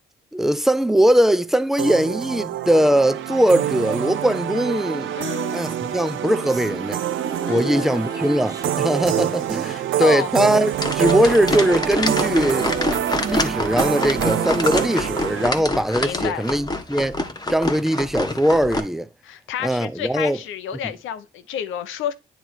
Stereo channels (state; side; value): normal; both; correlation 0.76